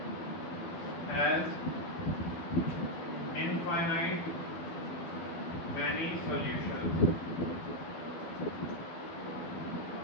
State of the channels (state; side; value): late; right; 12 ms